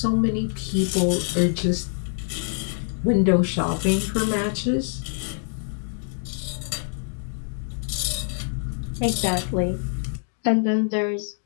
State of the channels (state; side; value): silent; right; digital silence